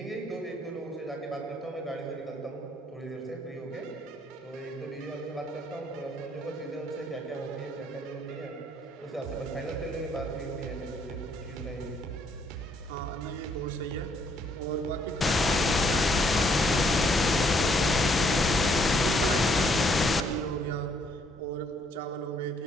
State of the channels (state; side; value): normal; both; correlation 0.68